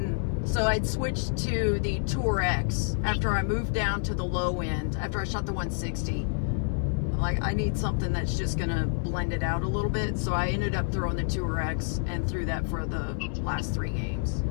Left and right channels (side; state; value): right; silent; 59 dB below the other